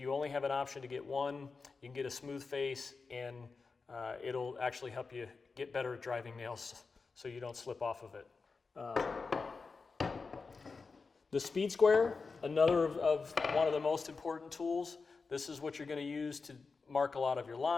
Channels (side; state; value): right; quieter; 4.5 dB